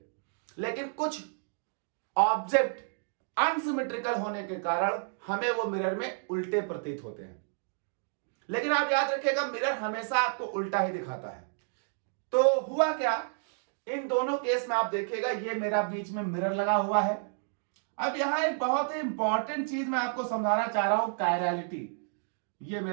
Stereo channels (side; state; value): left; silent; digital silence